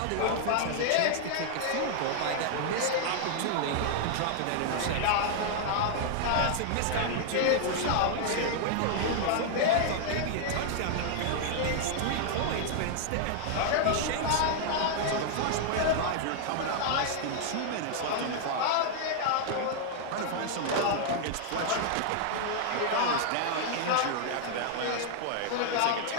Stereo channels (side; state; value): both; different; correlation -0.01